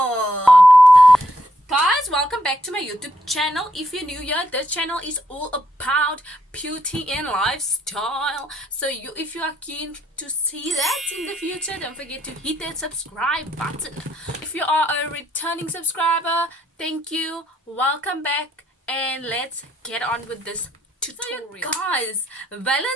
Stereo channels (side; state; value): both; normal; correlation 0.75